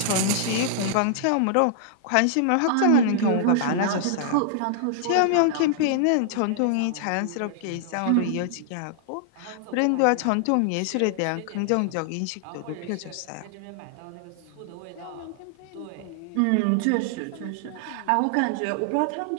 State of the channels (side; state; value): both; different; correlation -0.01